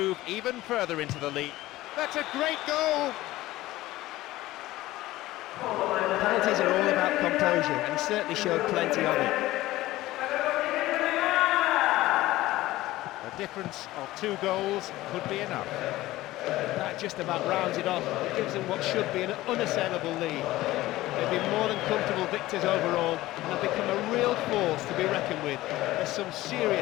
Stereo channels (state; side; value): quieter; right; 16.9 dB